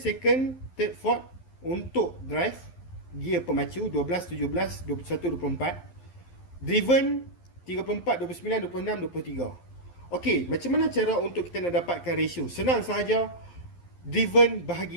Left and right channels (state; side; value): late; right; 11 ms